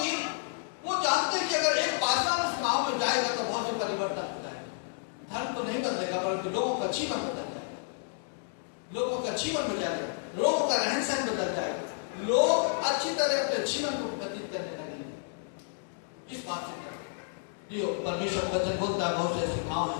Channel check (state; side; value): silent; right; digital silence